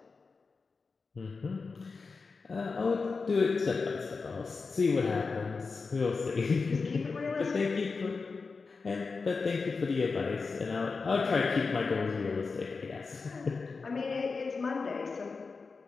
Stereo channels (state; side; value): quieter; right; 4.5 dB